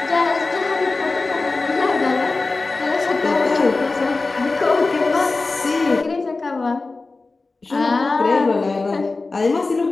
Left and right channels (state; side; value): quieter; right; 3.6 dB